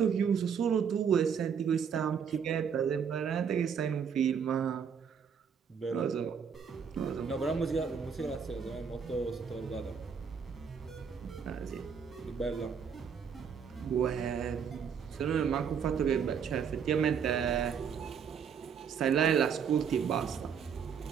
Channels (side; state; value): left; quieter; 7.0 dB